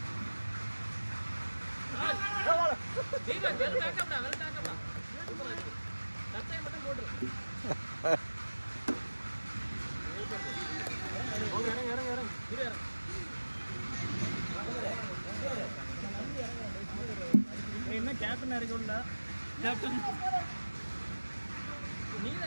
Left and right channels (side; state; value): both; inverted; correlation -1.00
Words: தீபக் வெல் பேக்கப்டா சட்டை மட்டும் போடு. இறங்க என்ன கேப்டன் இறக்கும்டா. கேப்டன்